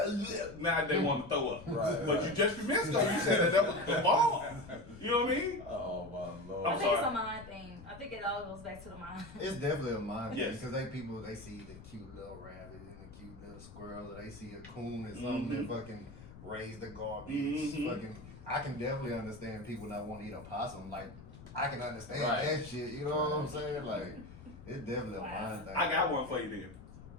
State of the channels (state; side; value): noise; left; rumble, 16 dB below the sound